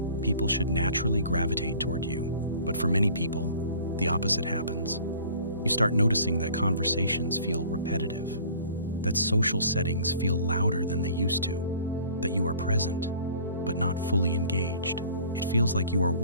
people should naturally gravitate toward you. But for many people, the opposite happens. You start noticing that conversations feel repetitive, that social settings feel louder than they used to, that you are present, but not fully engaged. It feels like you are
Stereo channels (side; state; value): both; inverted; correlation -0.50